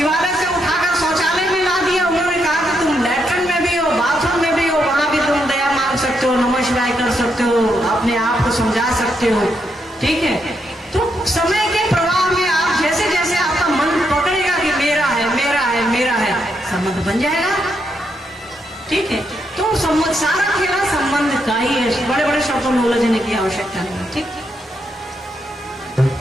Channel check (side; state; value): both; normal; correlation 0.80